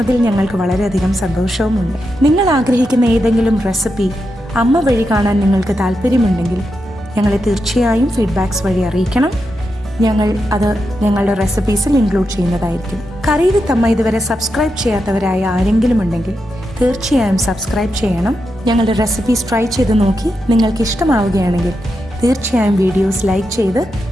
ഞങ്ങൾക്ക് വളരെയധികം സന്തോഷവുമുണ്ട്. നിങ്ങൾ ആഗ്രഹിക്കുന്ന ഏതെങ്കിലും റെസിപ്പി അമ്മ വഴി കാണാൻ നിങ്ങൾക്ക് താല്പര്യമുണ്ടെങ്കിൽ ഞങ്ങളെ തീർച്ചയായും ഫീഡ്ബാക്സ് വഴി അറിയിക്കണം. ഞങ്ങൾ അത് ഞങ്ങളുടെ റെസിപ്പീസിൽ ഇൻക്ലൂഡ് ചെയ്യുന്നതായിരിക്കും. കറി വിത്ത് അമ്മ ഇതുവരെ സബ്സ്ക്രൈബ് ചെയ്യാത്തവരായ ആരെങ്കിലും ഉണ്ടെങ്കിൽ തീർച്ചയായും സബ്സ്ക്രൈബ് ചെയ്യണം. ഞങ്ങളുടെ റെസിപ്പീസ് ട്രൈ ചെയ്ത് നോക്കി നിങ്ങൾക്ക് ഇഷ്ടമാവുകയാണെങ്കിൽ തീർച്ചയായും വീഡിയോസ് ലൈക്ക് ചെയ്ത്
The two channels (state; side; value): normal; both; correlation 0.86